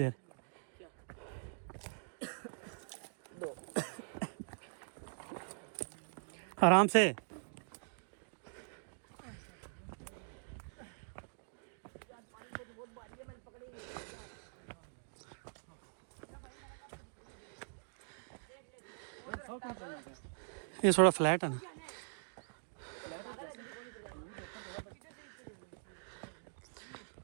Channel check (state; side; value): silent; left; digital silence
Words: आराम से। ये थोड़ा फ्लैट है ना।